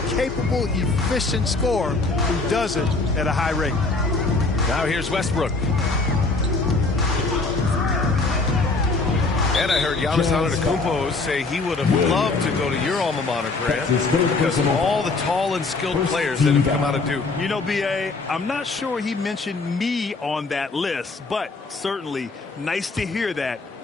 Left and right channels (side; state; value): right; quieter; 3.6 dB